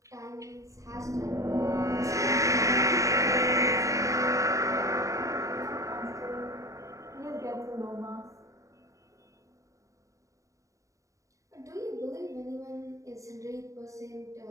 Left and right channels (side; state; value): left; late; 0.16 ms